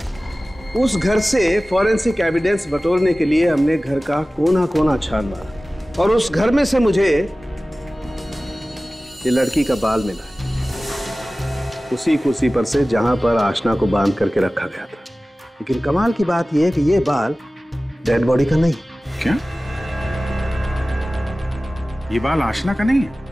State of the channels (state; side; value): normal; both; correlation 0.97